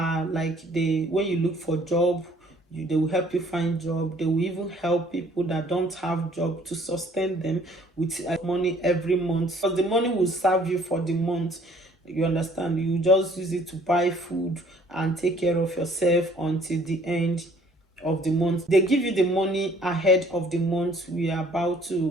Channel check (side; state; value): both; normal; correlation 0.58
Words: like, when you look for job, they will help you find job. They will even help people that don't have job to sustain them with money every month, because the money will serve you for the month, you understand. You just use it to buy food and take care of yourself until the end of the month. They give you the money ahead of the month we are about